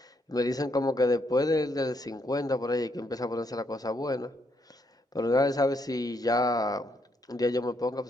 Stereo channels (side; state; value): both; normal; correlation 0.75